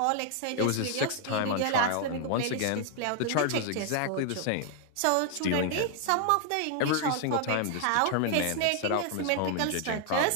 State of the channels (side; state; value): both; different; correlation 0.00